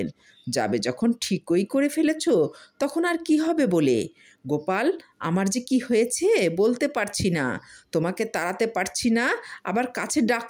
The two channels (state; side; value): identical; both; correlation 1.00